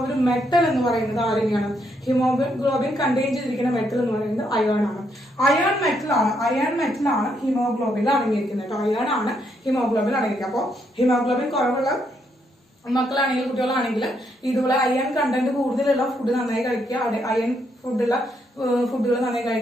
ഒരു മെറ്റൽ എന്ന് പറയുന്നത് ആരെയാണ്? ഹിമോഗ്ലോബിൻ കണ്ടെയ്ൻ ചെയ്തിരിക്കുന്ന മെറ്റൽ എന്ന് പറയുന്നത് അയൺ ആണ്. അയൺ മെറ്റൽ ആണ് ഹിമോഗ്ലോബിൻ അടങ്ങിയിരിക്കുന്നത്. അയൺ ആണ് ഹിമോഗ്ലോബിൻ അടങ്ങിയിരിക്കുക. അപ്പോൾ ഹിമോഗ്ലോബിൻ കുറവുള്ള മക്കളാണെങ്കിലും കുട്ടികളാണെങ്കിലും ഇതുപോലെ അയൺ കണ്ടന്റ് കൂടുതലുള്ള ഫുഡ് നന്നായി കഴിക്കുക, അയൺ ഫുഡുകൾ നന്നായി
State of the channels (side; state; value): both; normal; correlation 0.76